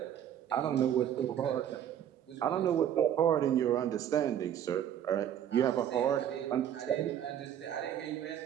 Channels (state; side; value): quieter; left; 10.0 dB